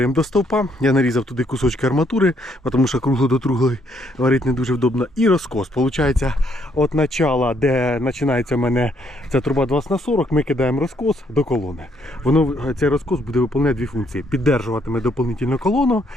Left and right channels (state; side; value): normal; both; correlation 0.71